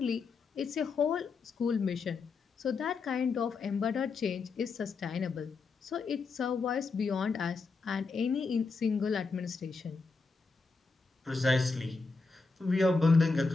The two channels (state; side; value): quieter; right; 4.3 dB